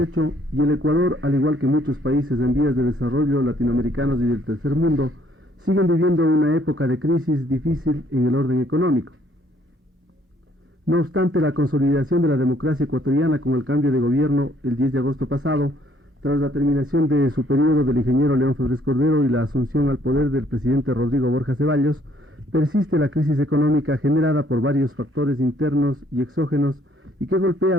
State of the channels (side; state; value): both; normal; correlation 0.65